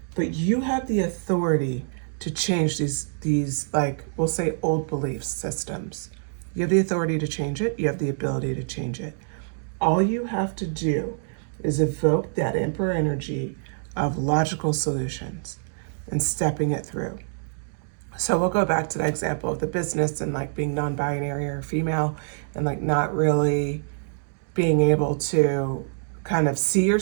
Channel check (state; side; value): silent; left; digital silence